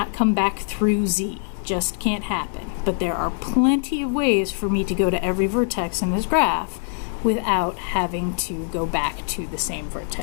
come back through Z. Just can't happen. But there are plenty of ways for me to go to every vertex in this graph without having to go back to the same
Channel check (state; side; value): silent; right; 62 dB below the other